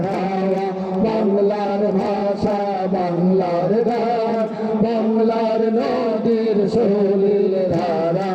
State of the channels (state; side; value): identical; both; correlation 1.00